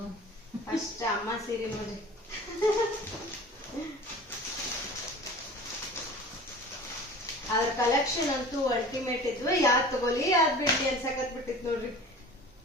ಫಸ್ಟ್ ಅಮ್ಮ ಸೀರೆ ನೋಡ್ರಿ. ಅದ್ರ ಕಲೆಕ್ಷನ್ ಅಂತೂ ಅಲ್ಟಿಮೇಟ್ ಇದ್ವು. ಯಾವ್ದ್ ತಗೋಲಿ ಯಾವ್ದ್ ಬಿಡ್ಲಿ ಅನ್ಸಕತ್ ಬಿಟ್ಟಿತ್ ನೋಡ್ರಿ.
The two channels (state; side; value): normal; both; correlation 0.40